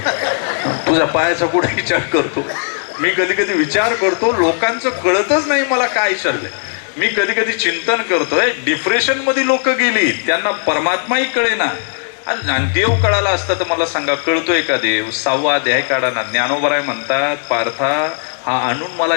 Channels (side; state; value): right; silent; 69 dB below the other